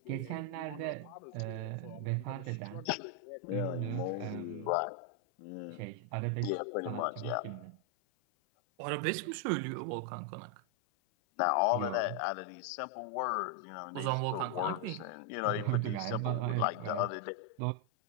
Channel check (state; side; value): different; both; correlation 0.00